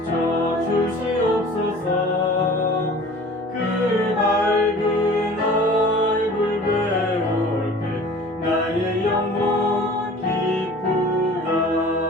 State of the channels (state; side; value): normal; both; correlation 0.44